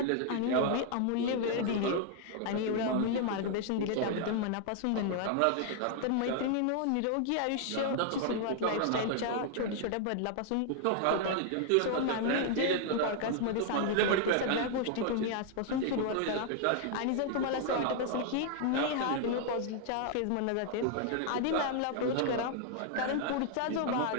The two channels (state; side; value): different; both; correlation 0.00